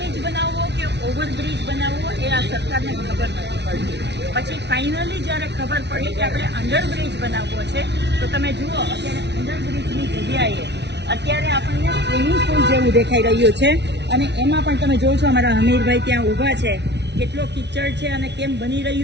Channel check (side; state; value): left; late; 0.50 ms